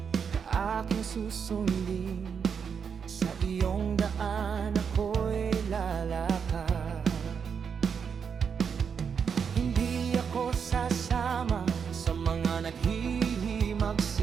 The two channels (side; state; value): left; quieter; 6.7 dB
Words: aking susundin. Sa iyong daan ako'y lalakad. Hindi ako sasama sa mga